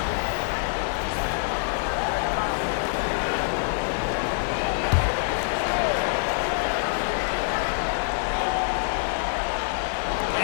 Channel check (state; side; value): silent; right; digital silence